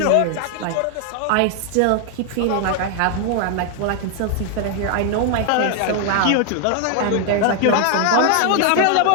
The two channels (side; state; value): both; different; correlation 0.00